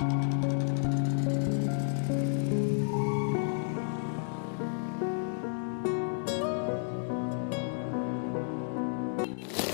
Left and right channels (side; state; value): right; silent; digital silence